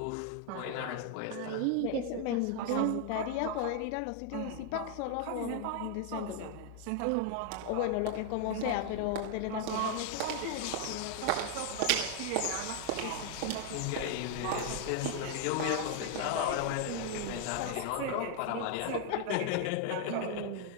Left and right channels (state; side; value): different; both; correlation 0.00